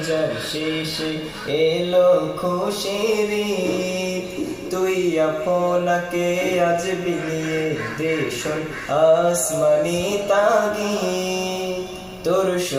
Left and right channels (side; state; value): both; identical; correlation 1.00